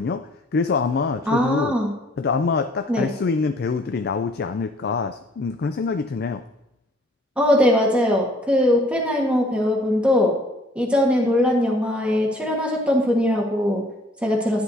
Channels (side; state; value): both; normal; correlation 0.58